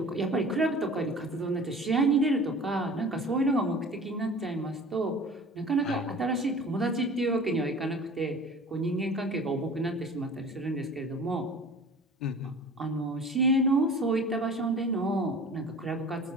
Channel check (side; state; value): both; normal; correlation 0.42